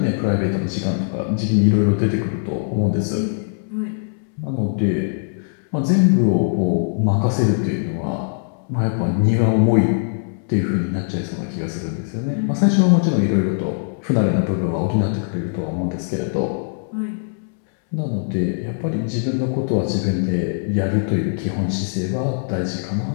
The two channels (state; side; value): silent; right; 65 dB below the other